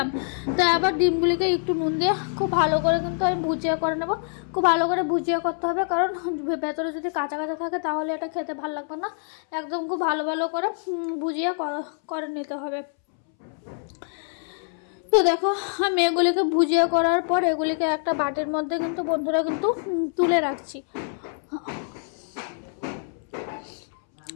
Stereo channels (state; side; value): silent; right; 62 dB below the other